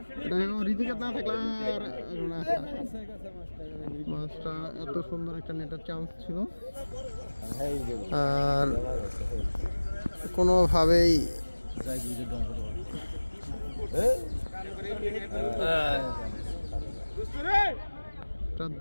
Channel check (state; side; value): inverted; both; correlation -1.00